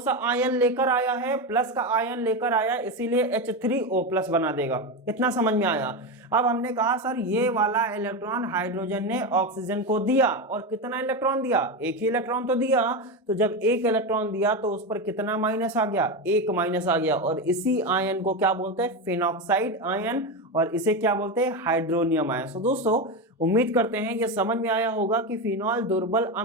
आयन लेकर आया है? प्लस का आयन लेकर आया, इसीलिए H3O+ बना देगा। इतना समझ में आया। अब हमने कहा सर ये वाला इलेक्ट्रॉन हाइड्रोजन ने ऑक्सीजन को दिया, और कितना इलेक्ट्रॉन दिया? एक ही इलेक्ट्रॉन तो दिया। तो जब एक इलेक्ट्रॉन दिया तो उस पर कितना माइनस आ गया? एक माइनस आ गया, और इसी आयन को क्या बोलते हैं? फिनॉक्साइड आयन, और इसे क्या बोलते हैं? Hydronium ion. तो दोस्तों उम्मीद करते हैं ये समझ में आया होगा कि फिनॉल दुर्बल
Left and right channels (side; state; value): both; normal; correlation 0.15